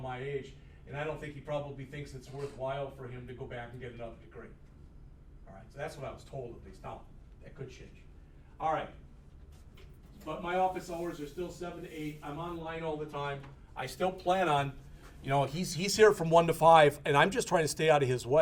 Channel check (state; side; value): identical; both; correlation 1.00